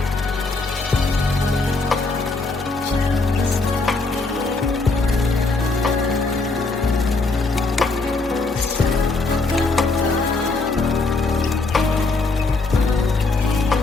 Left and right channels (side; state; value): right; quieter; 3.6 dB